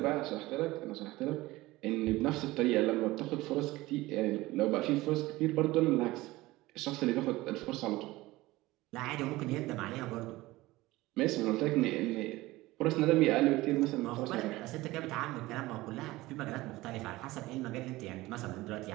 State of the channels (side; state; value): left; quieter; 19.0 dB